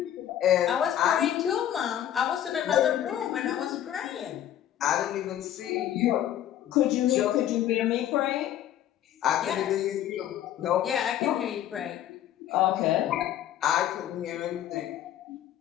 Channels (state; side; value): quieter; right; 11.4 dB